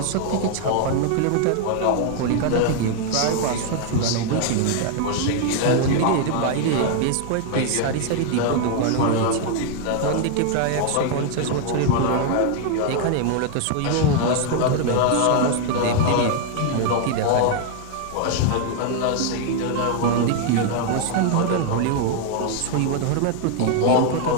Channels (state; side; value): different; both; correlation 0.00